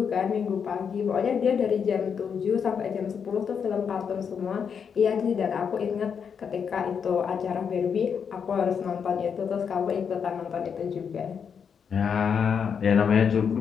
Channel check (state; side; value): quieter; right; 6.9 dB